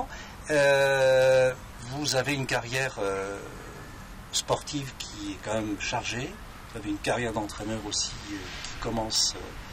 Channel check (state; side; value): identical; both; correlation 1.00